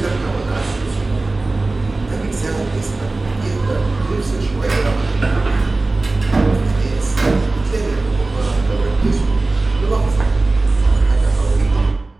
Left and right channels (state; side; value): quieter; left; 3.2 dB